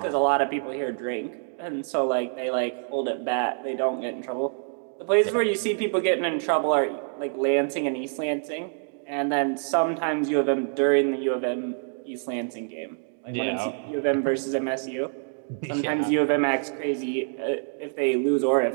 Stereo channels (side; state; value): left; silent; digital silence